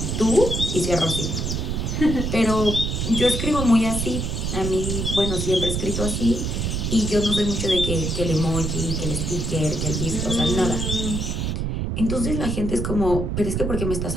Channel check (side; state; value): right; noise; rumble, 1 dB below the sound